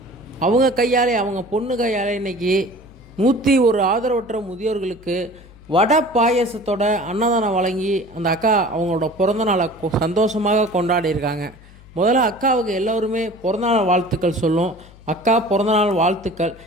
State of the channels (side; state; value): left; noise; hum, 22 dB below the sound